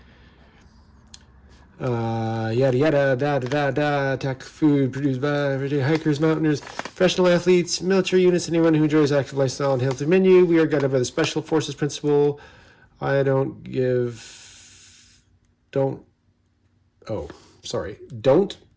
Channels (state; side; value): identical; both; correlation 1.00